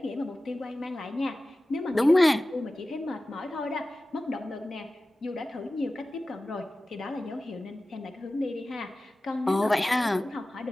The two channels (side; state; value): both; normal; correlation 0.96